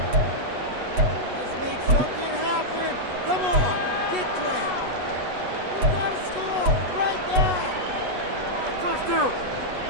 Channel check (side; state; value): left; late; 8.1 ms